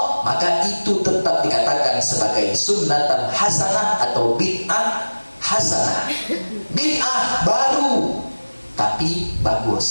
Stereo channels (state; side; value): inverted; both; correlation -1.00